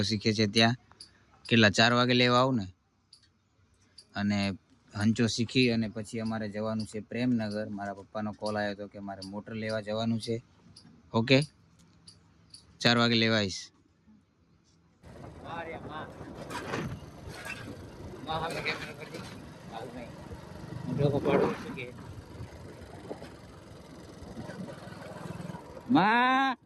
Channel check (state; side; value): identical; both; correlation 1.00